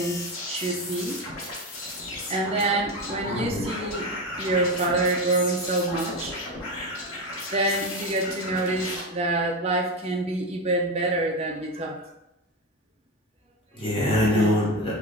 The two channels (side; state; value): both; normal; correlation 0.18